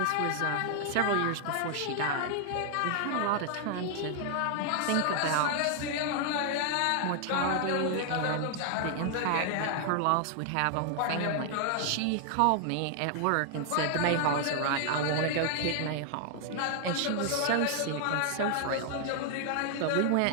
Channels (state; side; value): different; both; correlation 0.00